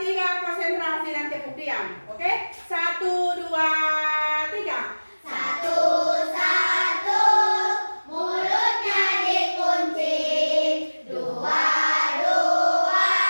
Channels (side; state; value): both; inverted; correlation -1.00